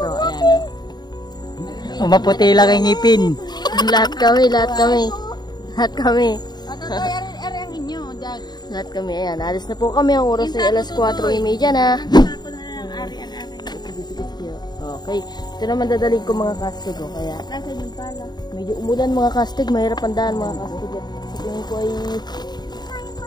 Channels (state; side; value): late; right; 0.20 ms